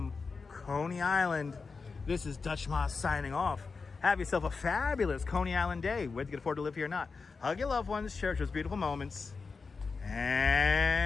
Coney Island, this is Dutch Moss signing off. Have yourself a fabulous Coney Island day, whether you can afford to live here or not. Hug your loved ones, cherish those beautiful moments.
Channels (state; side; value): quieter; right; 4.7 dB